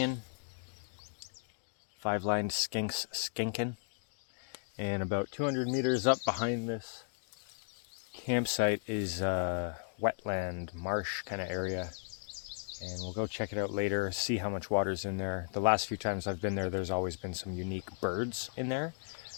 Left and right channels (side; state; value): right; silent; digital silence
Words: 5 lined skinks skinking. And about 200 meters up behind this campsite is a wetland, marsh kind of area. And we'll go check it out later, see how much water's in there. The last few times I've been there, there's always been some unique birds in there.